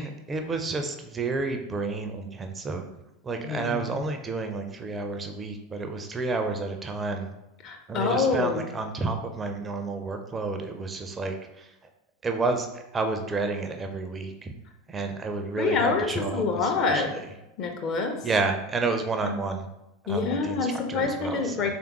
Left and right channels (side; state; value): both; normal; correlation 0.38